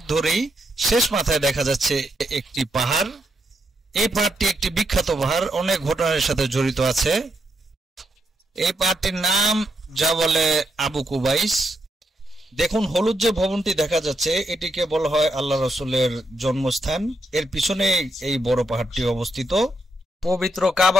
ধরেই শেষ মাথায় দেখা যাচ্ছে একটি পাহাড়। এই পাহাড়টি একটি বিখ্যাত পাহাড়, অনেক ঘটনার সাথে জড়িত আছে। এই পাহাড়টির নাম যা বলে আবু কুবাইস। দেখুন, হলুদ যে ভবনটি দেখা যাচ্ছে এটিকে বলা হয় আল্লাহ রসুলের জন্মস্থান। এর পিছনে এই বড় পাহাড়টি অবস্থিত। পবিত্র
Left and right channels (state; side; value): normal; both; correlation 0.80